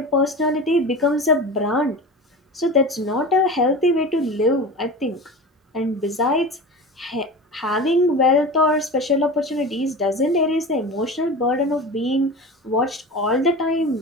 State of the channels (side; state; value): both; normal; correlation 0.31